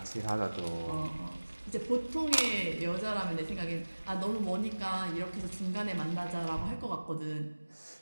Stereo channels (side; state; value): both; inverted; correlation -1.00